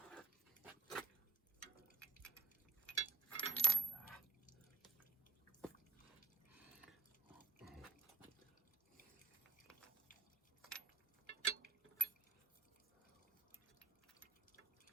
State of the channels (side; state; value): left; quieter; 3.8 dB